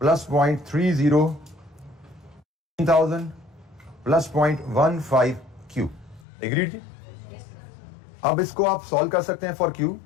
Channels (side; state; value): right; drops out; at 6.2 s